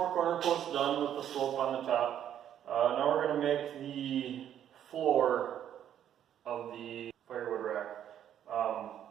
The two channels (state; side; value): quieter; left; 10.2 dB